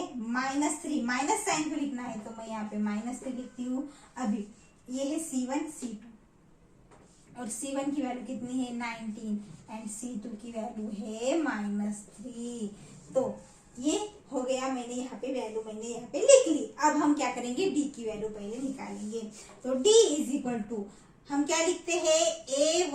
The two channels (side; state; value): both; identical; correlation 1.00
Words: -3, माइनस साइन को लिखना है, तो मैं यहाँ पे -3 लिखती हूँ। अभी ये है c1, c2 और c1 की वैल्यू कितनी है 19 एंड c2 की वैल्यू है -3। तो ये हो गया, मैंने यहाँ पे वैल्यू लिख ली। अब हम क्या करेंगे, d की वैल्यू पहले निकालेंगे। तो d इज इक्वल टू हम क्या लिखते हैं,